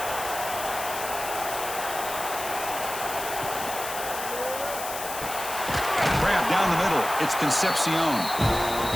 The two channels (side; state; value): left; noise; hiss, 8 dB below the sound